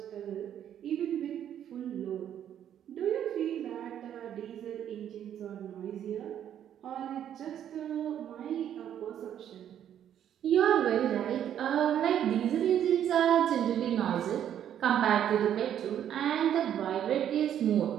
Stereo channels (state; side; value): quieter; left; 10.1 dB